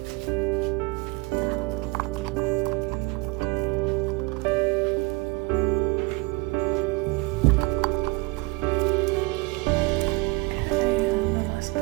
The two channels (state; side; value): quieter; left; 25.2 dB